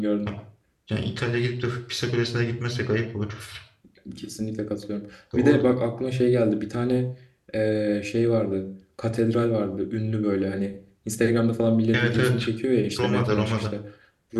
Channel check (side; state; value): both; identical; correlation 1.00